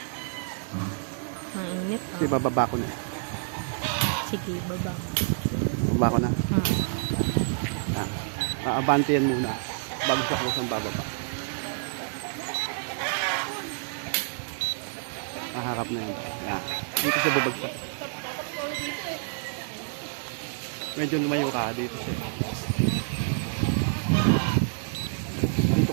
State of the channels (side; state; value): left; silent; 59 dB below the other